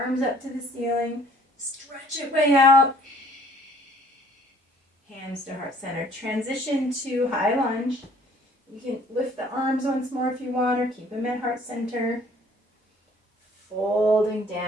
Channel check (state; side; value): normal; both; correlation 0.57